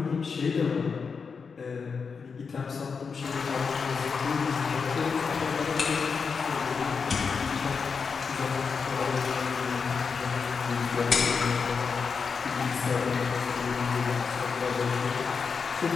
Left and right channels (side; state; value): right; quieter; 5.5 dB